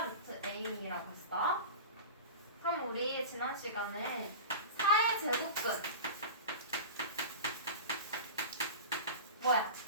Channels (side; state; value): both; inverted; correlation -0.31